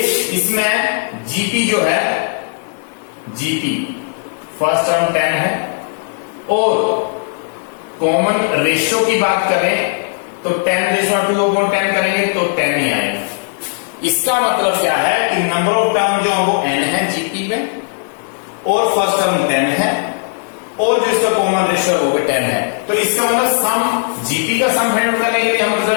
इसमें जीपी जो है जीपी फर्स्ट टर्म 10 है और कॉमन रेशियो की बात करें तो 10⁻2/10 करेंगे तो 10 ही आएगा। इसका मतलब क्या है कि नंबर ऑफ टर्म जो है वो n है जीपी में और फर्स्ट टर्म 10 है और जो इसका कॉमन रेशियो वो भी 10 है। तो इसका मतलब सम जीपी का सम फाइंड आउट करने के लिए हम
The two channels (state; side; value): silent; right; digital silence